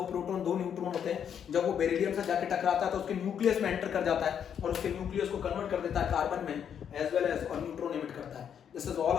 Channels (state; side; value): quieter; right; 8.4 dB